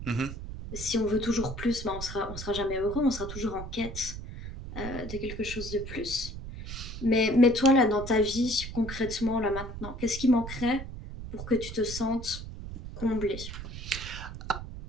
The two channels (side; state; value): right; noise; rumble, 9 dB below the sound